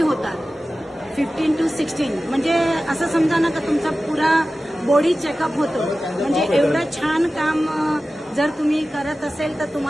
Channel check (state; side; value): normal; both; correlation 0.95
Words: 15 to 16 म्हणजे असं समजा ना का तुमचा पुरा बॉडी चेकअप होतो। म्हणजे एवढं छान काम जर तुम्ही करत असेल तर